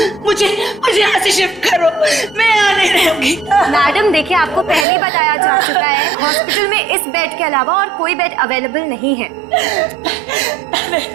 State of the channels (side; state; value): left; drops out; at 4.9 s